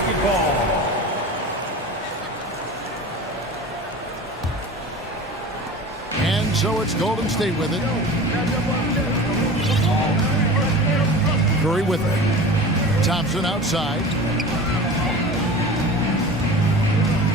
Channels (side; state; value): both; normal; correlation 0.36